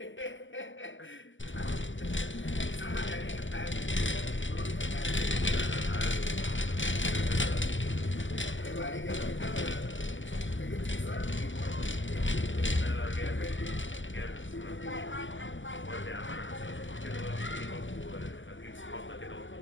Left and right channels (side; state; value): right; late; 0.55 ms